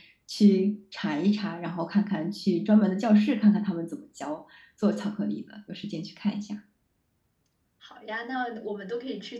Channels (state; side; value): identical; both; correlation 1.00